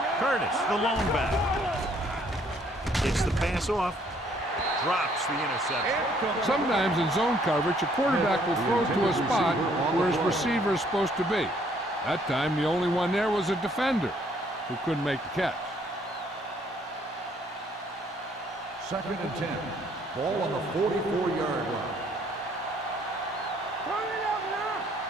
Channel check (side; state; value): both; normal; correlation 0.64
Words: Curtis, the lone back. Gets the pass off. Drops the interception. Sometimes in zone coverage, a quarterback will throw to a spot where his receiver is supposed to be. That time, the only one there was a defender who couldn't make the catch. Second and 10. Ball on the 44-yard line. Turn it up now.